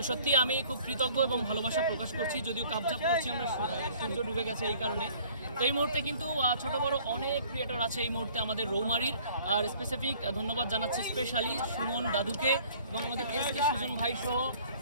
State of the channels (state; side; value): inverted; both; correlation -0.54